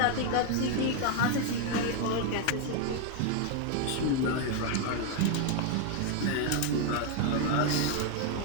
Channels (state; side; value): different; both; correlation 0.00